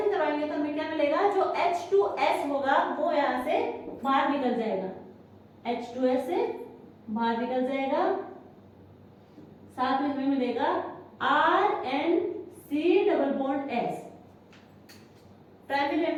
करवाएंगे तो हमें क्या मिलेगा, जो H2S होगा वो यहाँ से बाहर निकल जाएगा, H2S से बाहर निकल जाएगा, साथ में हमें मिलेगा RNC double bond S। Primary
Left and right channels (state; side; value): identical; both; correlation 1.00